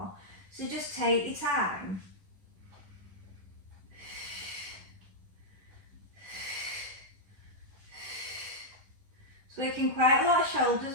so just take your time. It's working quite a lot of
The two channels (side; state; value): left; late; 10 ms